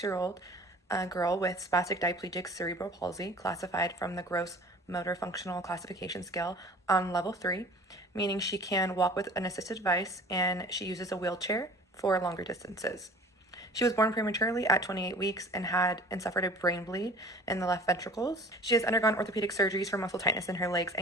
girl with spastic diplegic cerebral palsy, classified from the gross motor functional classification scale on level 3, meaning she can walk with an assisted device and she uses a wheelchair for longer distances. She was born prematurely at 28 weeks and suffered a brain bleed in the left ventricles. She has undergone orthopedic surgeries for muscle tightness in her legs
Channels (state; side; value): normal; both; correlation 0.45